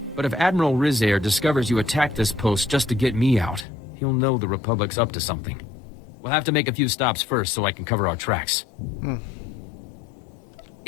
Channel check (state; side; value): drops out; right; at 3.7 s